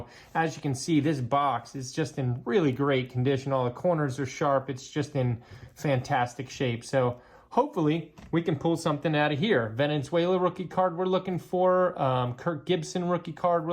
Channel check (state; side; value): identical; both; correlation 1.00